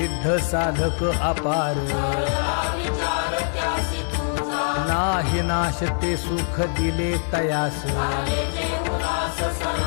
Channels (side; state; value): right; silent; digital silence